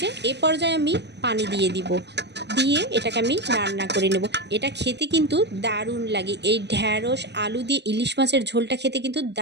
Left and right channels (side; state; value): left; late; 0.50 ms